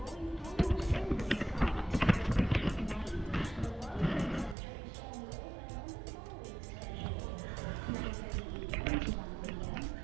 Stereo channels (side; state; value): left; drops out; at 4.5 s